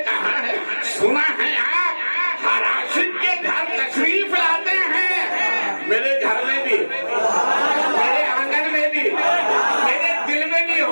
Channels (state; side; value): inverted; both; correlation -1.00